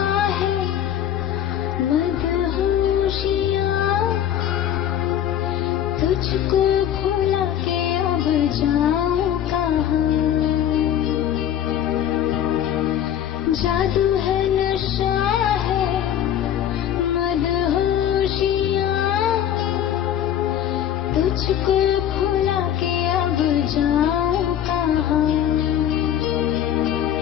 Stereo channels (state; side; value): quieter; right; 10.5 dB